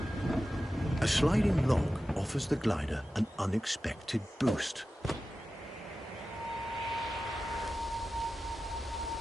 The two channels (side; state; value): both; normal; correlation 0.94